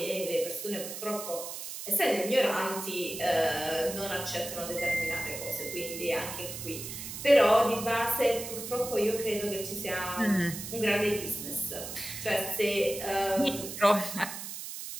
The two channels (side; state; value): right; noise; hiss, 8 dB below the sound